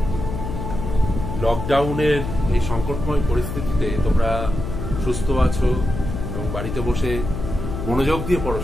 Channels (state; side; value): noise; left; hum, 5 dB below the sound